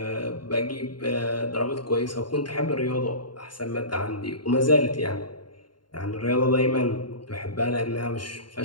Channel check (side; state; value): right; late; 0.72 ms